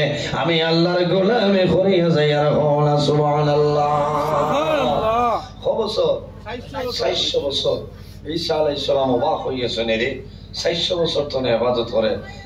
আমি আল্লাহর গোলামি করিয়া যাই আর সুবহানাল্লাহ সুবহানাল্লাহ বছর 400 বছর ঈসা আলাইহিস সালাম অবাক হইয়াছেন রে 400 বছর ধরে ইবাদত করে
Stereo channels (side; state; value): both; identical; correlation 1.00